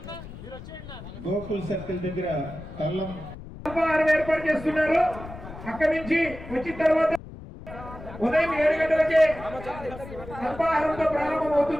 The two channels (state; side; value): noise; left; rumble, 13 dB below the sound